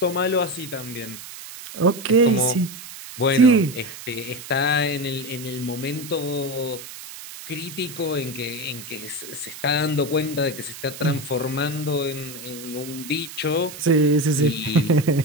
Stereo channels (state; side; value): noise; right; hiss, 13 dB below the sound